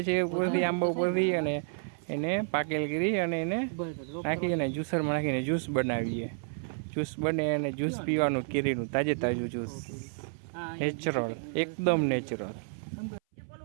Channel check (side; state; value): left; silent; 57 dB below the other